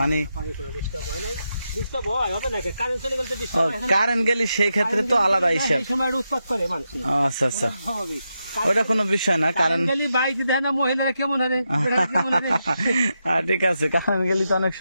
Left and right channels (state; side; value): inverted; both; correlation -0.86